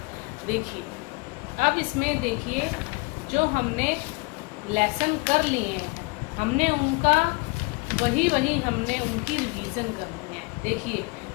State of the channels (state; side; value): quieter; right; 26.8 dB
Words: देखिए। अब इसमें देखिए जो हमने लेसन कर लिए हैं, हमने उनका वही हमने उनकी रिवीजन करनी है। देखिए